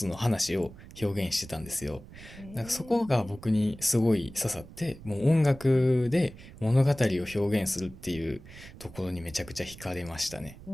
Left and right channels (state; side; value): noise; right; rumble, 18 dB below the sound